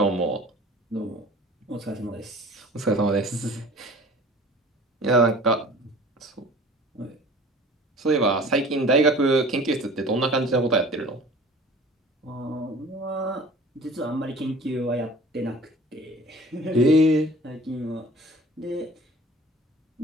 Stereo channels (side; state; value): both; normal; correlation 0.45